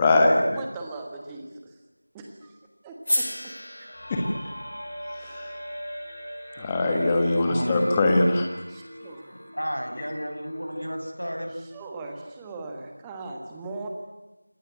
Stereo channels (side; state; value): both; inverted; correlation -0.94